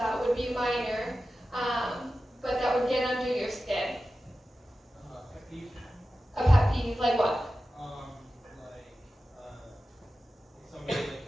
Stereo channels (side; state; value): both; normal; correlation 0.94